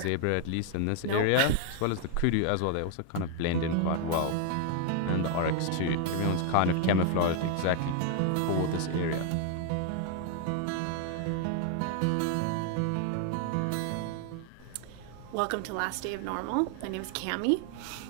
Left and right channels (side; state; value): both; different; correlation 0.00